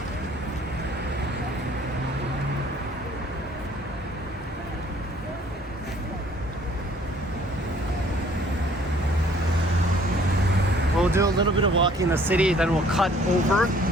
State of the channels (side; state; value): both; normal; correlation 0.58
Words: We'll do a little bit of walking in the city, then we'll cut over